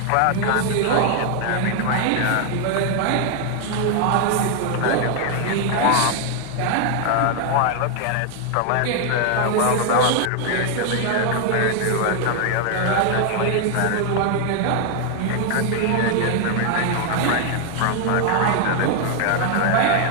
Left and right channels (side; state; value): both; different; correlation 0.00